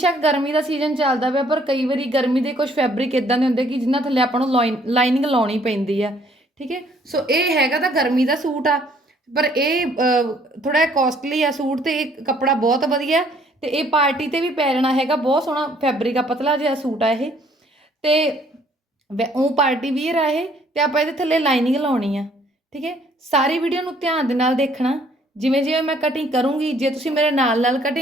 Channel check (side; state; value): both; normal; correlation 0.62